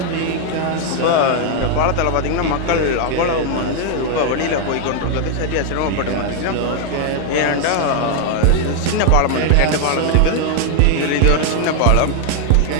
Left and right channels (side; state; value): both; different; correlation 0.00